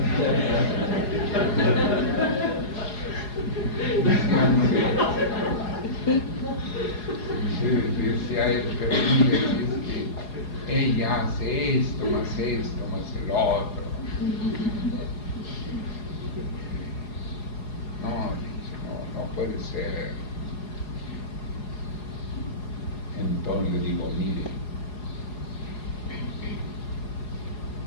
Decía él, pero mire, es que ella hace esto, más el otro. No puede ser. Entonces le digo, mire,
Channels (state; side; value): late; right; 4.8 ms